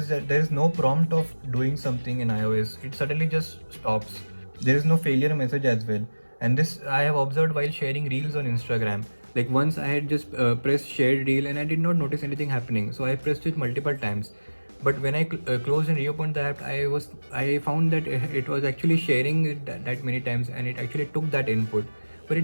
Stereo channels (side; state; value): both; inverted; correlation -1.00